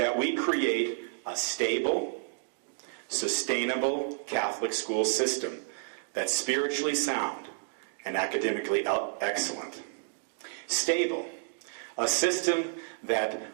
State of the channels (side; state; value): left; silent; digital silence